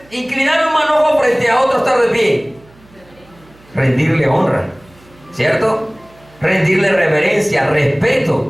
inclinar un manojo frente a otro estar de pie? Rendirle honra, ¿cierto? Rendirle reverencia,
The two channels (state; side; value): noise; right; hum, 28 dB below the sound